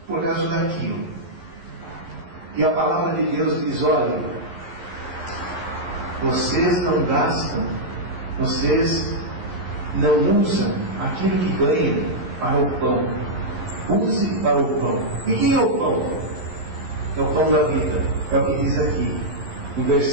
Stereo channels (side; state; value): left; late; 11 ms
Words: por causa daquilo. E a palavra de Deus diz, olha, vocês não gastam, vocês não usam aquilo que ganham para o pão. Use para o pão. E quem é o pão? É o pão da vida. É o que diz aqui, no